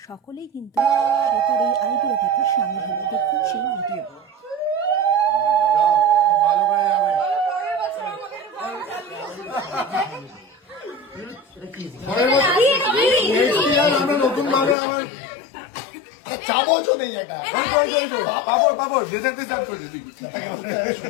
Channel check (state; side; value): drops out; right; at 14.8 s